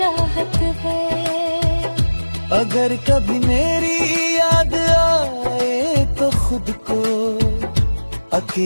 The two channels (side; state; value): both; inverted; correlation -1.00